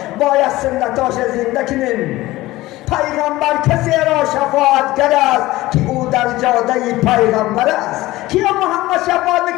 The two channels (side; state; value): right; quieter; 17.9 dB